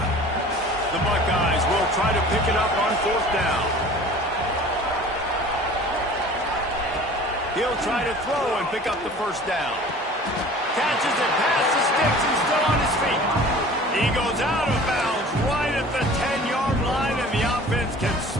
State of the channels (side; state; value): both; normal; correlation 0.44